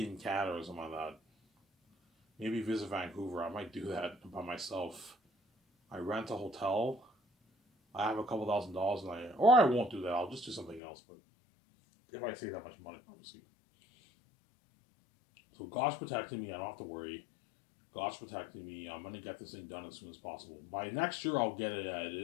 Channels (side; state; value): right; drops out; at 10.8 s